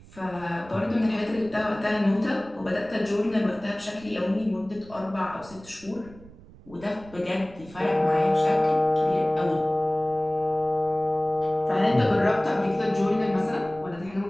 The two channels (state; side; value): noise; right; rumble, 21 dB below the sound